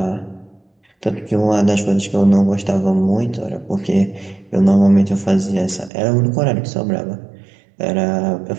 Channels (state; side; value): drops out; left; at 5.9 s